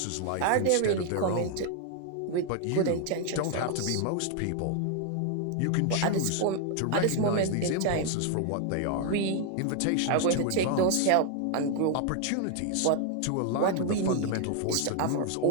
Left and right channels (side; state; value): both; different; correlation 0.00